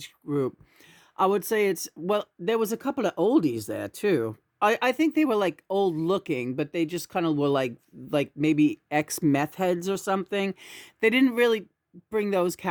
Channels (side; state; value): both; identical; correlation 1.00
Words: group? I would say well, there was a couple of oldies there too. I think they were like old looking, but they just kind of were like maybe ex meth heads or something. They didn't really bring those